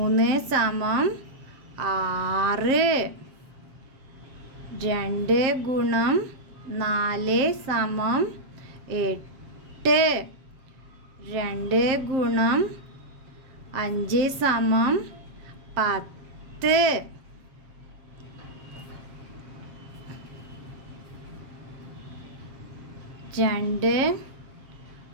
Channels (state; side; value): late; left; 7.5 ms